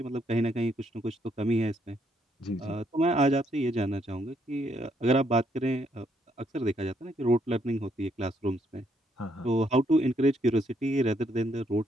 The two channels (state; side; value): normal; both; correlation 0.72